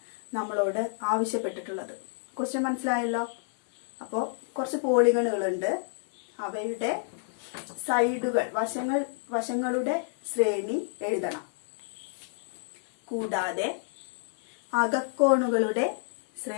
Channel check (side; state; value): right; silent; 58 dB below the other